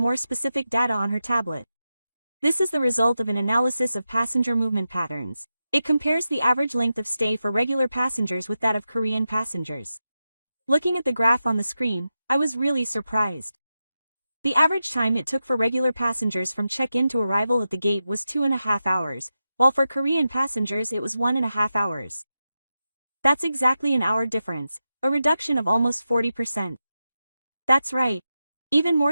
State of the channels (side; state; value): both; inverted; correlation -0.90